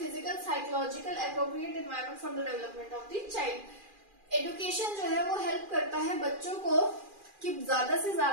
psychological, appropriate environment for the development of the child. Education जो है वो help करता है बच्चों को कि ज्यादा से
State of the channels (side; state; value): left; late; 2.4 ms